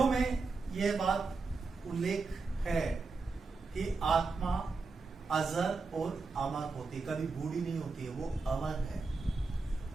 में यह बात उल्लेख है कि आत्मा अजर और अमर होती, कभी बूढ़ी नहीं होती है, वो अमर है।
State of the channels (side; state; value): left; quieter; 4.1 dB